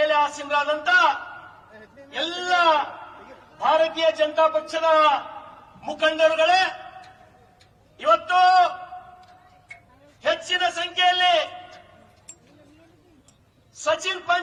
ಆಸೀನರಾದಂತ ಎಲ್ಲ ಭಾರತೀಯ ಜನತಾ ಪಕ್ಷದ ಮುಖಂಡರುಗಳೇ, ಇವತ್ತು ಹೆಚ್ಚಿನ ಸಂಖ್ಯೆಯಲ್ಲಿ ಸಚಿನ್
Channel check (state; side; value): identical; both; correlation 1.00